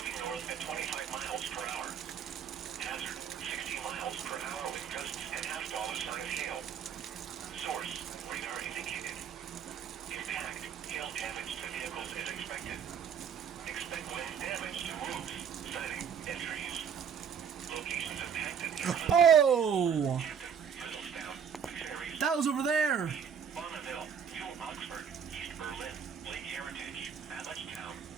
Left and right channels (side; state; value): left; quieter; 7.6 dB